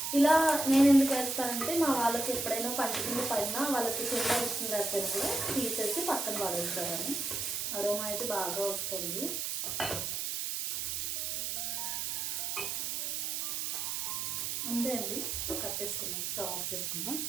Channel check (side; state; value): right; noise; hiss, 1 dB below the sound